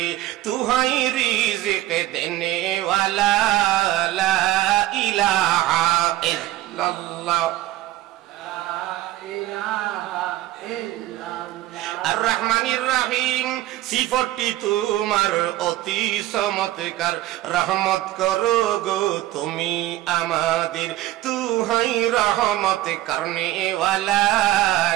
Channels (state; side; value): quieter; left; 15.4 dB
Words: তুহাই রিজিক দেনে ওয়ালা, লা ইলাহা ইল্লাল্লাহ। আর রহমানির রহিম, সিফতটি তোমার অতি চমৎকার, রহমত করো গো তুমি আমাদের, তুহাই রহমত করনে ওয়ালা,